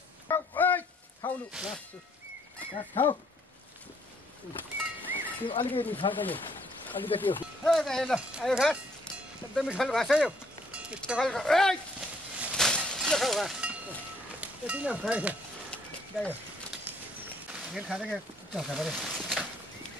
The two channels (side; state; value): both; normal; correlation 0.66